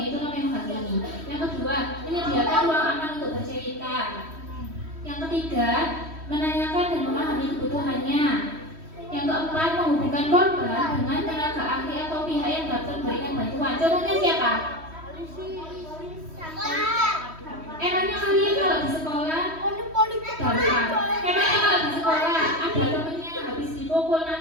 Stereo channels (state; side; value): late; left; 3.1 ms